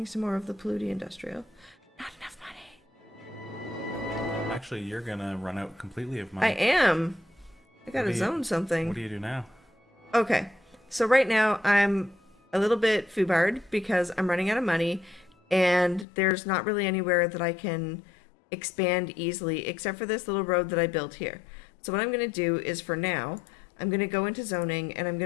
some more of the polluty industrial. Not enough money. Actually, you're gonna run out completely of money. I am. I gotta zone something. What do you do now? Okay, so right now I'm a little bit foobarred because I'm running out of money and there's not really anywhere that I can expand easily except for this little road that I built here. So what I'm going to do is for now, I'm going to go into zoning and I'm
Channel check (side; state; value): right; drops out; at 16.1 s